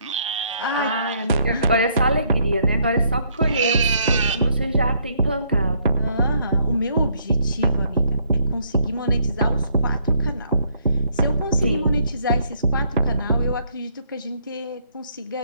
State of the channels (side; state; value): both; inverted; correlation -0.68